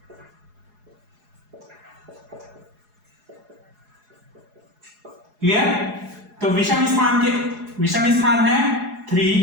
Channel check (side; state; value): left; late; 4.8 ms